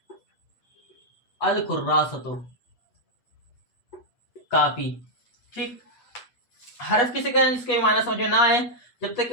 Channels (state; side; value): late; right; 8.2 ms